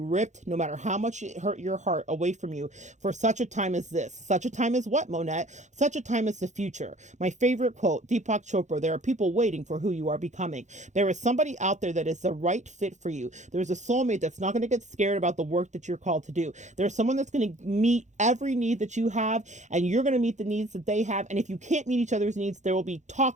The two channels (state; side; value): late; left; 0.35 ms